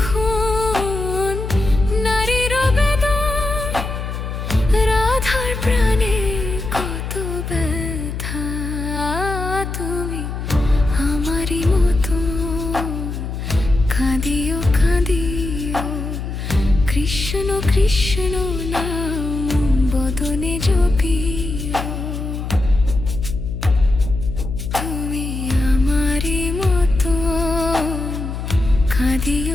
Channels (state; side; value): noise; left; hum, 5 dB below the sound